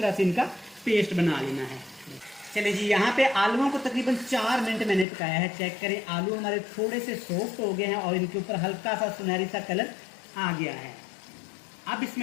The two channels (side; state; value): right; drops out; at 5.1 s